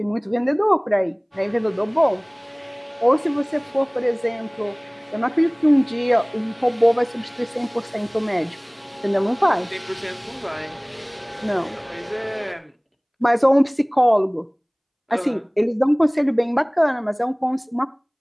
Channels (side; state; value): both; identical; correlation 1.00